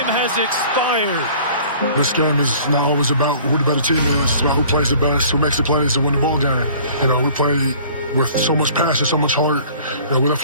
has expired. This game is not always about who the better team is. It's about who plays the best, who makes the plays to win the ball game. You know, we play with so much passion, so much heart. You know, we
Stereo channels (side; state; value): both; inverted; correlation -0.50